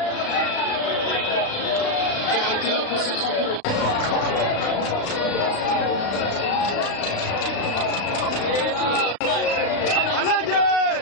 qui a été là pour cette rencontre.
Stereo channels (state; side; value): late; right; 35 ms